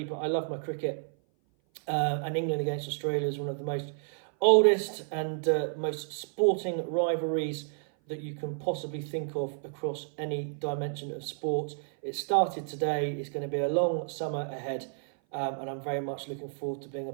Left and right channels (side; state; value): left; silent; 56 dB below the other